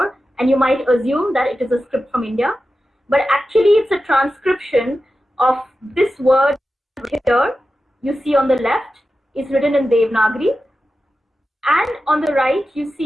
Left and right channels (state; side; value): normal; both; correlation 0.92